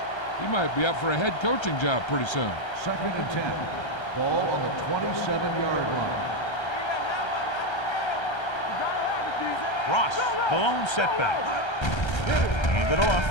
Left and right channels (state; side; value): late; right; 1.3 ms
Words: he might be up for a head coaching job pretty soon. 2nd and 10. Ball on the 27-yard line. Ross, the lone setback. Hand it off.